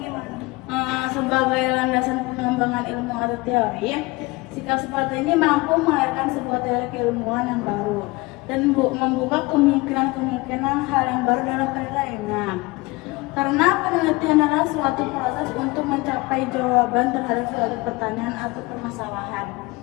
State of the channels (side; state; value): right; quieter; 23.3 dB